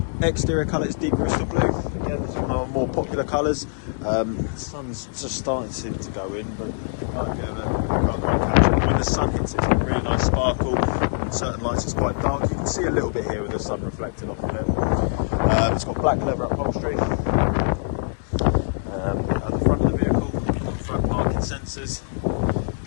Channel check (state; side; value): silent; right; 63 dB below the other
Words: Exterior colour is deep crystal blue. Again, it's one of our more popular colours. The sun's just starting to go in, but when the sun hits it's a really nice sparkle. On certain lights it's quite dark. You can see a little bit here with the sun reflecting off on it. It's got black leather upholstery. Sensors,